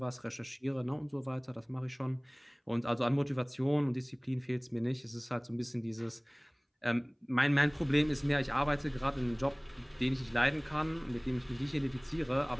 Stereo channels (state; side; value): identical; both; correlation 1.00